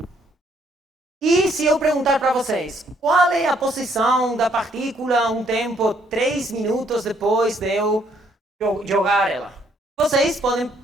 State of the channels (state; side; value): normal; both; correlation 0.67